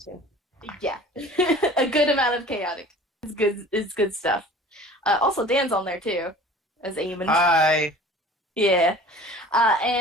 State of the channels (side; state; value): both; normal; correlation 0.45